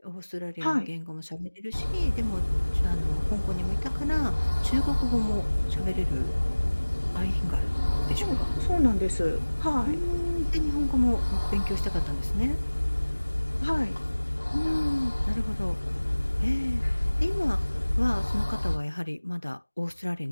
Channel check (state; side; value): inverted; both; correlation -1.00